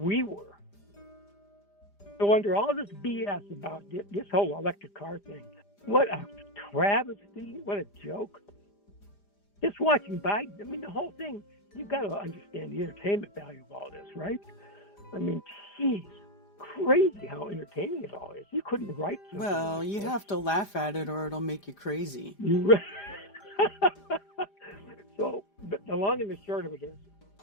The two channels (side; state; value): right; late; 5.0 ms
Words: were. So under all this BS about this whole electric car thing, what a travesty, what a joke. Just watching Biden, I mean, the whole thing, you've got to understand the entertainment value of all this, right? I mean, geez, crazy how entertaining it all is. You couldn't write something. Well, you have to laugh at it or it'll make you crazy. So, but the long and the short of it is,